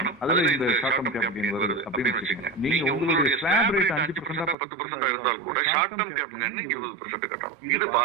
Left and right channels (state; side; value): drops out; left; at 4.5 s